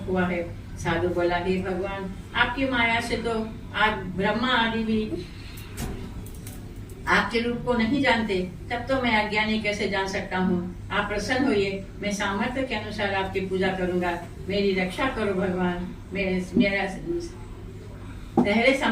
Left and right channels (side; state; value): both; identical; correlation 1.00